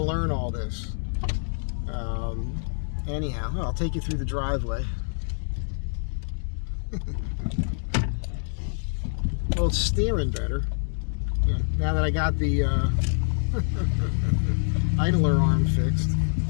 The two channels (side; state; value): right; silent; digital silence